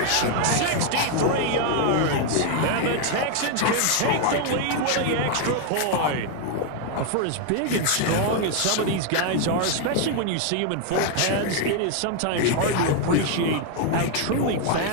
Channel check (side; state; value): both; different; correlation 0.00